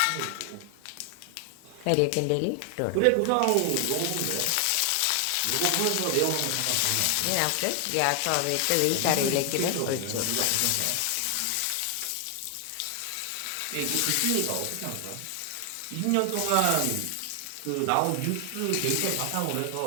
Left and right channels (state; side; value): different; both; correlation 0.00